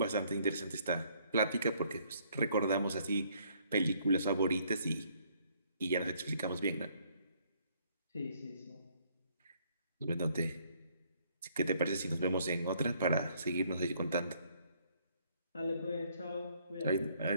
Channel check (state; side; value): inverted; both; correlation -0.66